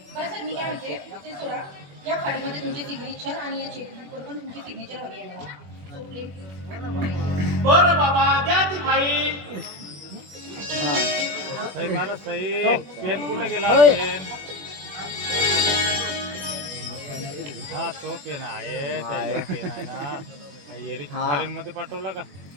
बरं सर मी काय म्हणते ते सोडा या फाईलमध्ये तुमची सिग्नेचर आणि या चेकबुकवर पण तुमची सिग्नेचर हवी आहे मला. So, please. बरं बाबा द्या ती फाईल सही मारा सही. पेन कुठे गेला पेन? हा तो पेन आहे त्याच्यावर पेन आहे ना. एरिक हा. फॉरेन मध्ये पाठवला का?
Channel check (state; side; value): late; left; 21 ms